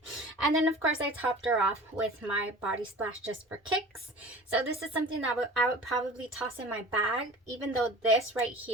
And then of course I topped her off with my body splash just for kicks. So this is something that I would probably toss in my bag, even though this right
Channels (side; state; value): both; normal; correlation 0.40